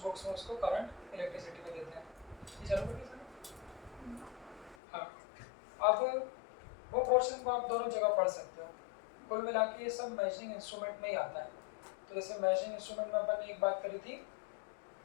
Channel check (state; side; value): drops out; right; at 4.8 s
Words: बुक्स में उसको करंट इलेक्ट्रिसिटी में देते हैं। ये चालू करिए सर। हाँ अब वो पोर्शन को आप दोनों जगह पढ़ सकते हो। कुल मिला के ये सब मेजरिंग इंस्ट्रूमेंट में ही आता है। तो जैसे मेजरिंग इंस्ट्रूमेंट में अपन ने एक बात करी थी